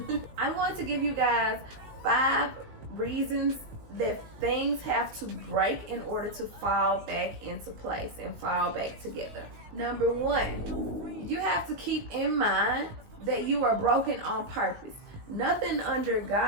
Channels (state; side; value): late; left; 19 ms